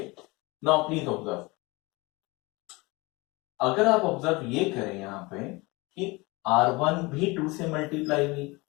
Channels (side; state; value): right; quieter; 24.4 dB